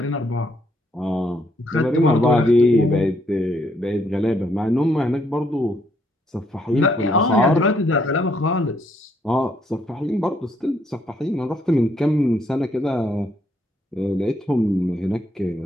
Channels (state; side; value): normal; both; correlation 0.72